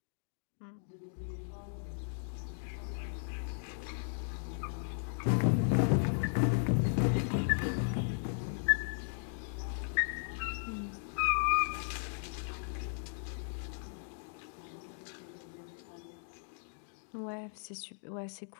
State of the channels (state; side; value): silent; right; digital silence